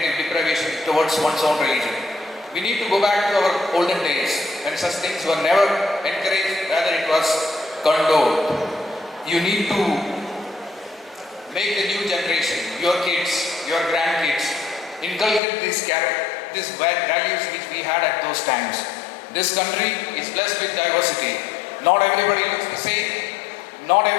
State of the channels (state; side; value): drops out; right; at 15.4 s